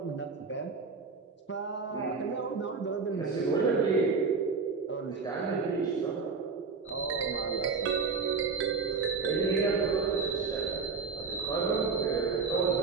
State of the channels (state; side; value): quieter; left; 4.8 dB